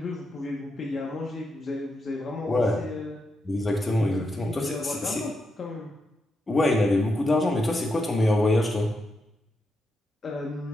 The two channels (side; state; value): both; normal; correlation 0.84